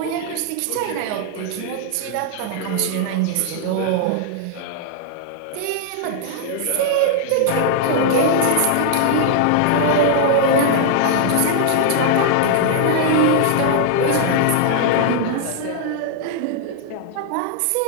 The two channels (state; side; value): different; both; correlation -0.01